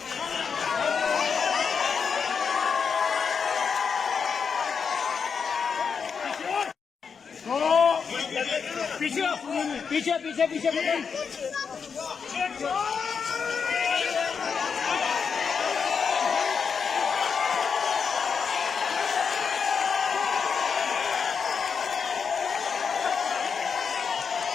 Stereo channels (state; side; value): quieter; right; 6.1 dB